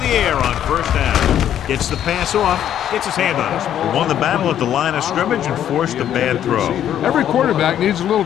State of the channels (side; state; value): right; quieter; 10.5 dB